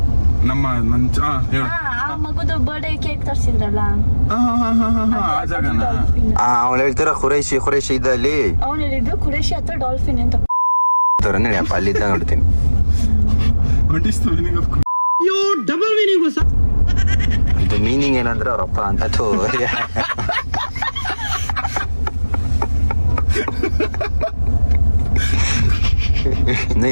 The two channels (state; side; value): inverted; both; correlation -1.00